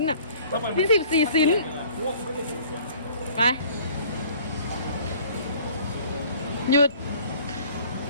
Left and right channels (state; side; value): inverted; both; correlation -0.52